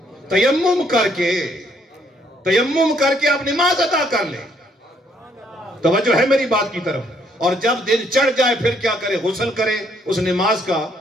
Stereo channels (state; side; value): normal; both; correlation 0.68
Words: تیمم کر کے آپ نماز ادا کر لیں۔ توجہ ہے میری بات کی طرف؟ اور جب دن چڑھ جائے پھر کیا کرے؟ غسل کرے اس نماز کا۔